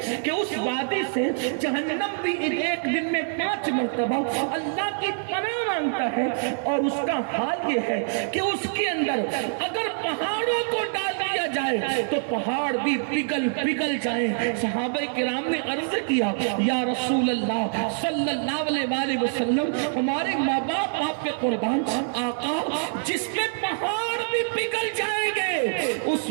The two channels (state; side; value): silent; left; digital silence